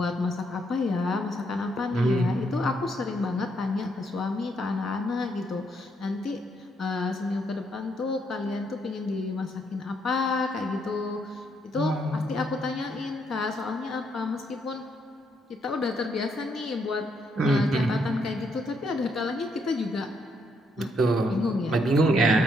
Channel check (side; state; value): both; normal; correlation 0.74